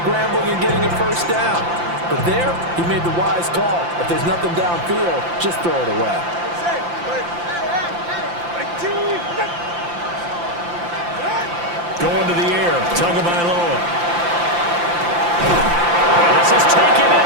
and getting a 1st down. But there, he made the wise call. If there's nothing downfield, just throw it away. Going to the air, Tagovailoa. This is taken in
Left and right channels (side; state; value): left; late; 5.8 ms